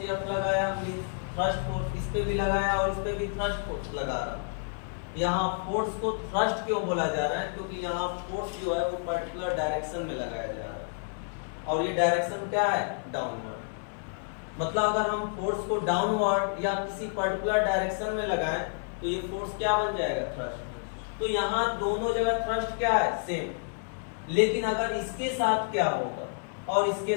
F लगाया, थ्रस्ट फोर्स इस पे भी लगाया और इस पे भी थ्रस्ट फोर्स लगा रहा। यहाँ फोर्स को थ्रस्ट क्यों बोला जा रहा है, क्योंकि यहाँ फोर्स जो है वो पर्टिकुलर डायरेक्शन में लगाया जा रहा है, और ये डायरेक्शन क्या है, डाउनवर्ड। मतलब अगर हम फोर्स को डाउनवर्ड या किसी पर्टिकुलर डायरेक्शन में लगाएं तो ये फोर्स क्या बन जाएगा, थ्रस्ट। तो यहाँ दोनों जगह थ्रस्ट क्या है, सेम। लेकिन अगर इसके साथ क्या होगा और इसके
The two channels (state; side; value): silent; right; 58 dB below the other